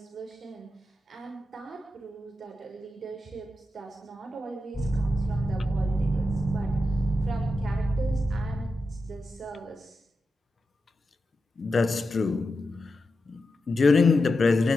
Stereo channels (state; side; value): normal; both; correlation 0.89